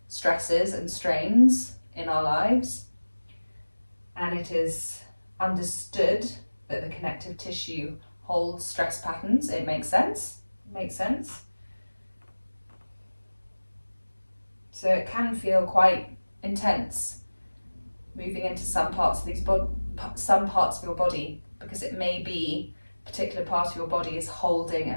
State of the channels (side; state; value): both; inverted; correlation -1.00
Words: stresses and strains in our lives. And it is understood that the connective tissue holds stress patterns. It makes sense. So it can feel quite intense moving into some parts of your body, because it may be a particular part of your body is holding